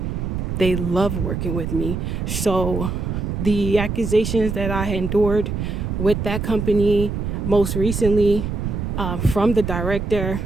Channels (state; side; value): noise; right; rumble, 3 dB below the sound